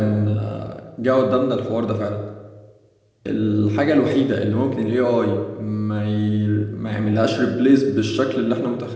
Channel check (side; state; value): both; identical; correlation 1.00